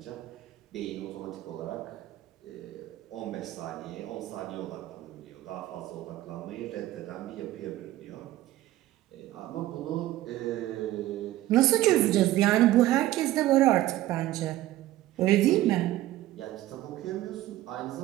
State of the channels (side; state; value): left; quieter; 15.3 dB